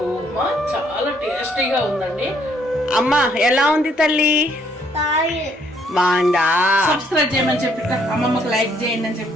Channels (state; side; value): normal; both; correlation 0.67